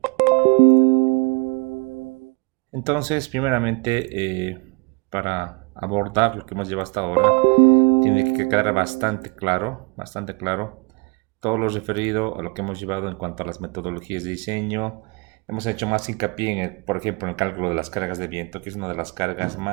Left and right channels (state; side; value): quieter; left; 28.9 dB